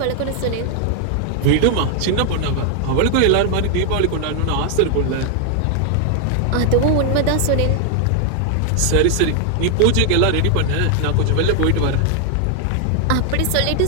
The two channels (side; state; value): both; different; correlation 0.00